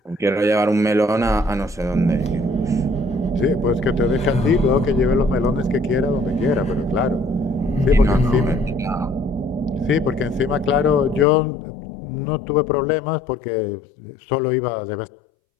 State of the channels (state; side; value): drops out; right; at 11.2 s